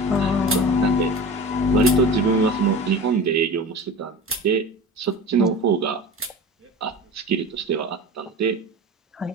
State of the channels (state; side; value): normal; both; correlation 0.34